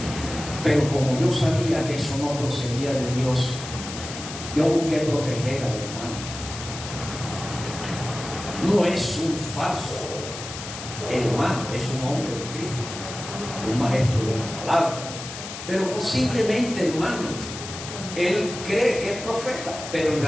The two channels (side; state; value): left; noise; hiss, 10 dB below the sound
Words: Pero como yo sabía que eso no procedía de Dios, yo busqué proteger al hermano. No es un falso hermano, es un hombre de Cristo, un maestro de la palabra. Pero posiblemente, hermano, él cree que es profeta, pero en